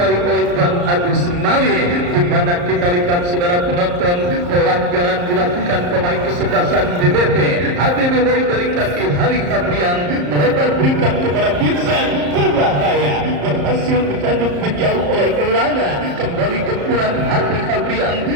oleh Bang Agus Mali, di mana kita lihat saudara penonton pelanggaran dilakukan pemain kesebelasan BBP. HBBW dari kaki Hari Fabrian melebar berikan kepada Vincent, berbahaya, berhasil dikandung menjauh oleh Elana. Kembali gempuran Hari Fabrian,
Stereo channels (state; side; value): late; left; 34 ms